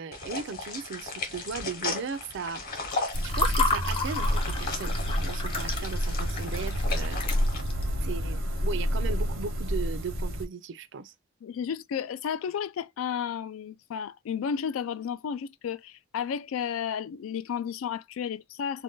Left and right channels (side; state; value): both; normal; correlation 0.42